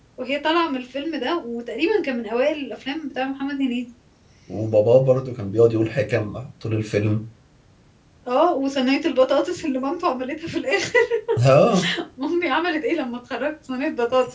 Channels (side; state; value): both; identical; correlation 1.00